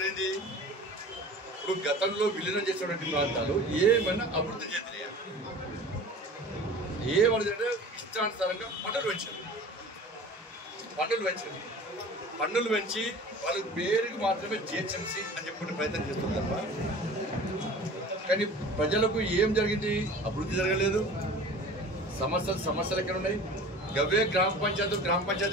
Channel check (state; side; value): normal; both; correlation 0.41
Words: ఏంది? ఇప్పుడు గతంలో విలీనం చేసినటువంటి ప్రాంతాలు ఏమైనా అభివృద్ధి చెందినాయా? ఏమవుతుందంటే ఇష్టానుసారంగా పన్నులు పెంచి వాళ్ళ పేరుకి మాత్రమే జిహెచ్ఎంసీ అని చెప్పుకునే ప్రయత్నం చేస్తుంది తప్ప కానీ ప్రజలకు ఏం జరిగింది? అభివృద్ధి జరగలేదు. సమస్యలు ఎక్కడ ఉన్నాయి? గవే గ్రామ